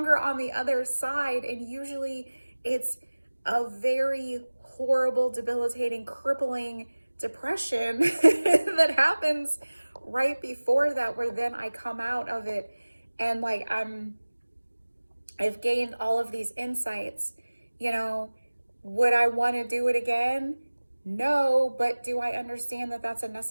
on the other side. And usually it's a very horrible, debilitating, crippling depression that happens right before that, where then I come out of it and I've gained all of these insights. Would I want to do it again? No, but do I understand that that's a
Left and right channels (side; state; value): both; inverted; correlation -1.00